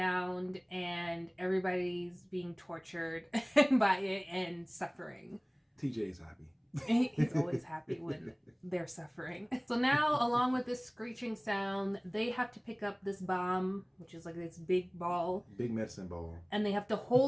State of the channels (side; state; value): both; identical; correlation 1.00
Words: and everybody's being tortured by it and suffering. TJ's happy. He's always happy when they're suffering. So now, along with this screeching sound, they have to pick up this bomb, which is like this big ball. Big medicine ball. And they have to